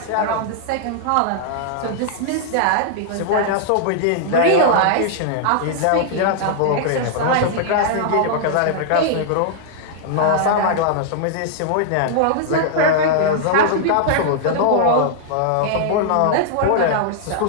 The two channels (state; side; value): different; both; correlation -0.01